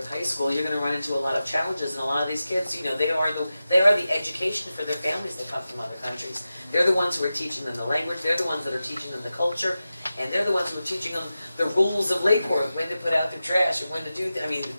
High School, you're going to run into a lot of challenges, and a lot of these kids, they are the education for their families that come from other countries. They're the ones who are teaching them the language. They're the ones that are teaching them the culture, and they're the ones who are teaching them the rules of Lake Worth, when to put out their trash and when to do.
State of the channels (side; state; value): both; inverted; correlation -0.93